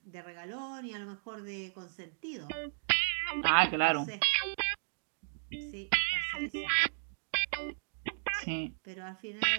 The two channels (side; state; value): left; silent; digital silence